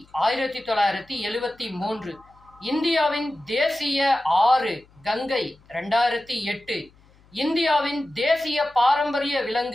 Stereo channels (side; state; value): left; noise; hum, 29 dB below the sound